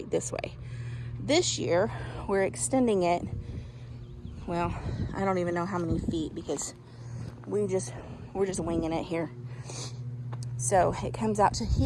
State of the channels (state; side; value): identical; both; correlation 1.00